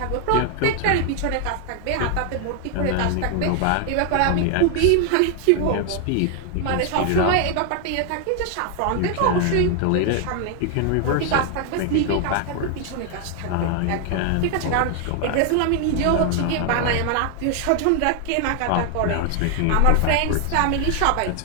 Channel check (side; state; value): both; different; correlation 0.00